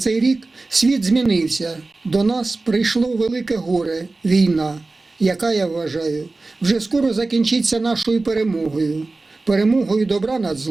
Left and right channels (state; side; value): quieter; left; 3.4 dB